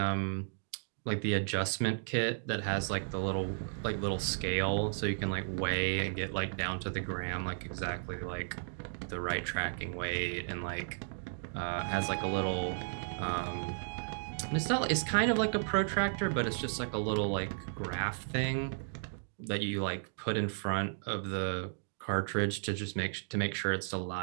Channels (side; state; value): left; silent; digital silence